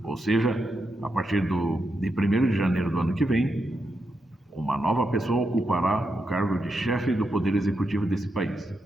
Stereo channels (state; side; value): normal; both; correlation 0.85